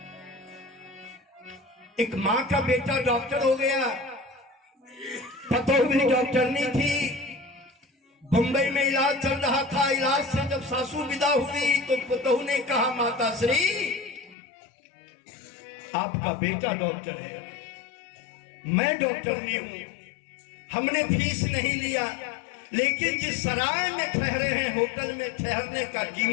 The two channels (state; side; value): drops out; right; at 14.4 s